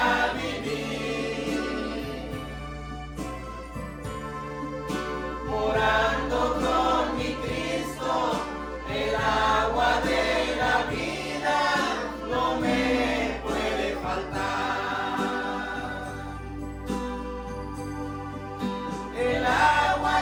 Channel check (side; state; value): both; identical; correlation 1.00